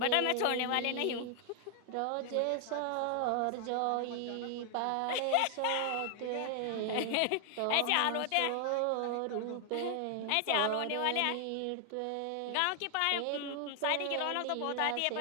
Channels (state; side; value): different; both; correlation 0.00